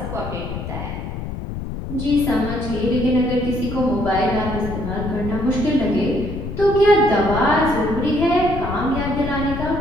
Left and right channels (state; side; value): noise; left; rumble, 6 dB below the sound